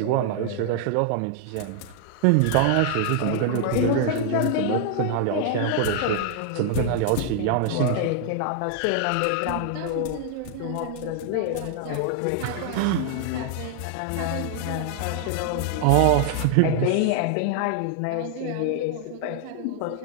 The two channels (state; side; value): different; both; correlation 0.00